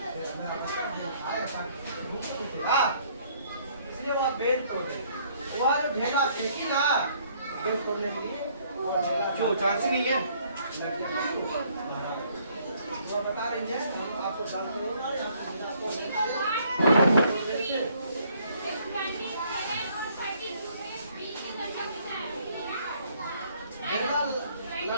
मेरा बच्चा खाएगा, इसलिए वह बेल तोड़े, वह जो ढेला फेंकी ना बेल तोड़ने के लिए, जो चांस ही नहीं है। वो बता रही है, हम आपको डाल करेंगे, आपको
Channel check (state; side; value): inverted; both; correlation -0.64